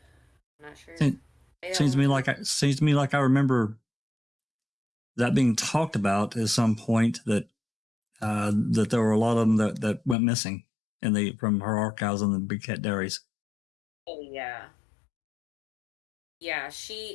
not sure. Seems to me like I remember that being talked about at some point, that that there were a lot of them that went missing from her archives on the Big Cat Diaries. Oh yeah. Yeah,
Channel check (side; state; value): right; drops out; at 10.2 s